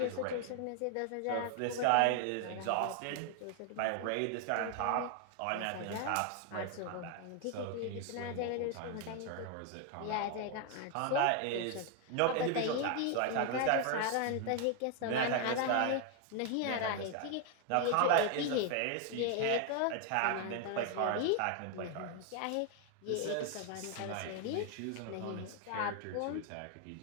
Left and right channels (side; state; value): both; different; correlation 0.01